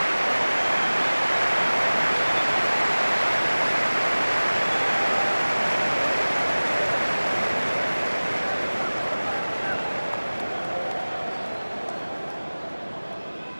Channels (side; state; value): both; inverted; correlation -1.00